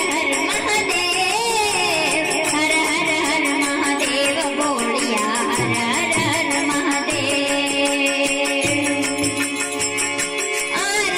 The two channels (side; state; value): both; identical; correlation 1.00